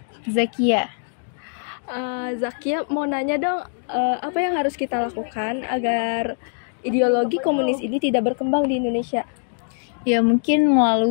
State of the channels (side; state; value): right; silent; digital silence